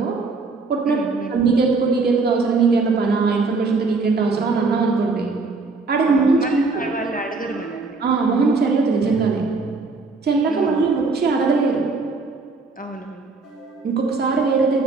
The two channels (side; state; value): left; quieter; 4.0 dB